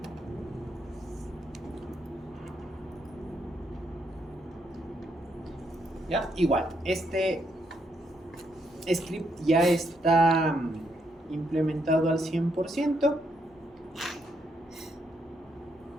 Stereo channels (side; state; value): both; normal; correlation 0.77